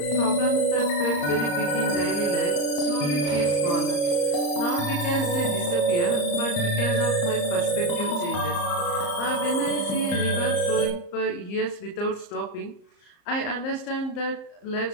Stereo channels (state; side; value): late; right; 34 ms